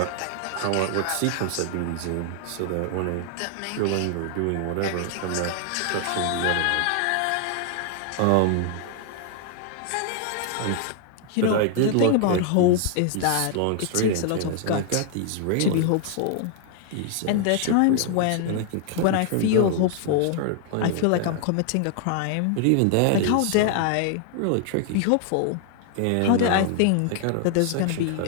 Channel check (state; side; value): different; both; correlation 0.00